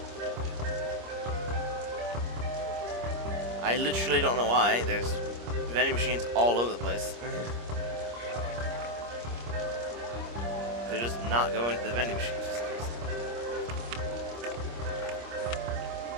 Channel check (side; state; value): left; late; 25 ms